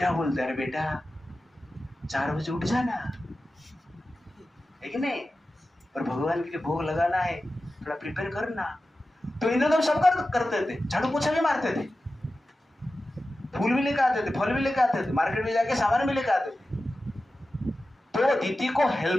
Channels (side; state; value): both; normal; correlation 0.94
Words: बोलते अरे बेटा 4 बजे उठ जाना, है कि नहीं? और भगवान के लिए भोग लगाना है, थोड़ा प्रिपेयर करना। तो इंद्र तो सब करते थे, झाड़ू पोछा भी मारते थे, फूल भी लेकर आते थे, फल भी लेकर आते थे, मार्केट में जाके सामान भी लेकर आते थे। तो दीदी को